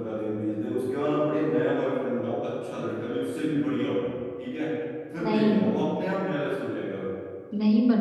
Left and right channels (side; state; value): both; identical; correlation 1.00